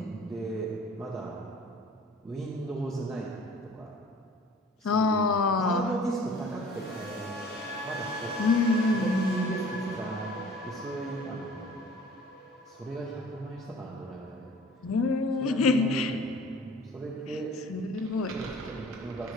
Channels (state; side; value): normal; both; correlation 0.49